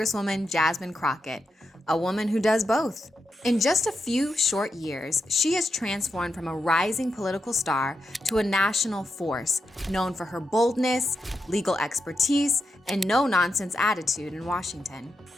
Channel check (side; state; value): both; normal; correlation 0.86